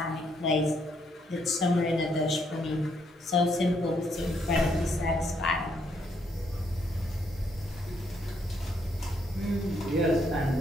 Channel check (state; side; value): normal; both; correlation 0.73